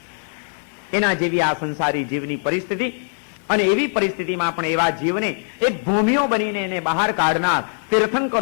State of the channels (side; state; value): right; silent; 65 dB below the other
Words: એના જેવી આ સંસારી જીવની પરિસ્થિતિ. અને એવી પરિસ્થિતિમાં પણ એવા જીવને એક ભૂમિઓ બનીને એને બહાર કાઢનાર